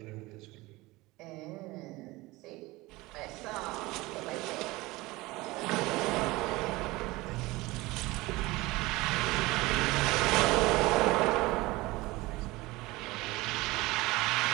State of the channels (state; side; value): quieter; left; 20.9 dB